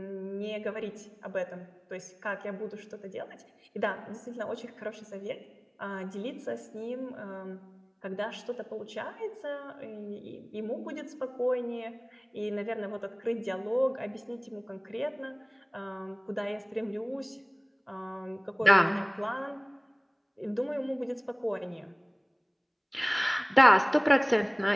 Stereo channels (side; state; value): both; identical; correlation 1.00